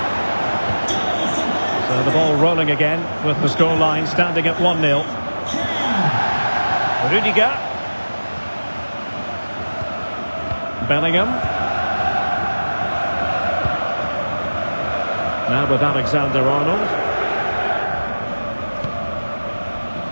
So the ball rolling again with the scoreline standing at 1-0. Rudiger. Bellingham. Now with Alexander-Arnold.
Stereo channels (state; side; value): inverted; both; correlation -1.00